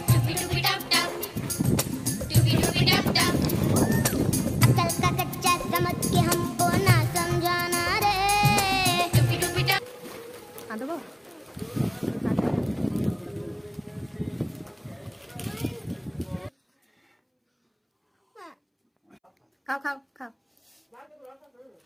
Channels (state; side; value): identical; both; correlation 1.00